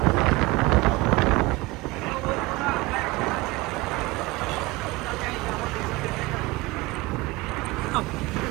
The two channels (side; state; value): left; quieter; 21.7 dB